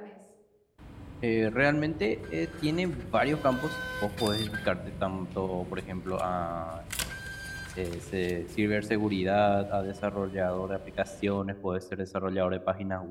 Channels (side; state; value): both; identical; correlation 1.00